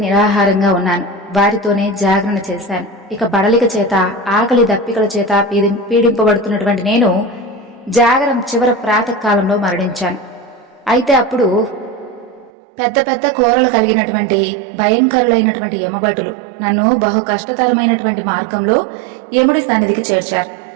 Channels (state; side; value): drops out; left; at 12.5 s